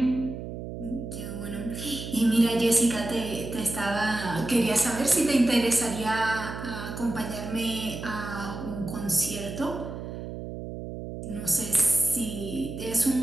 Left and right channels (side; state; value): right; noise; hum, 8 dB below the sound